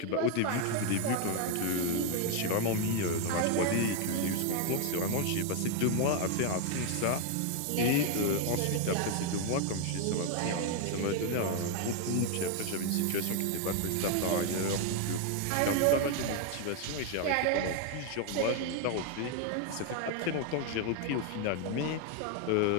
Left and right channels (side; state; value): both; different; correlation 0.01